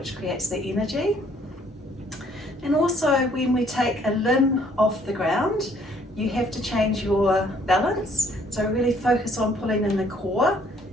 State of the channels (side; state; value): both; normal; correlation 0.63